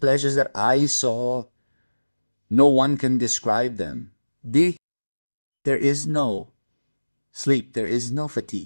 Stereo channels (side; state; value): both; inverted; correlation -1.00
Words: that I saw, no one can describe them. There is no sleep, there is no